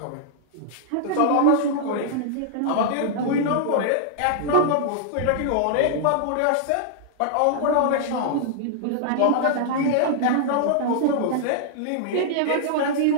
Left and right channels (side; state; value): both; different; correlation -0.01